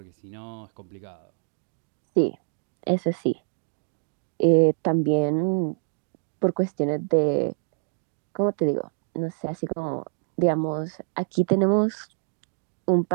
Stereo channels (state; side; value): silent; left; digital silence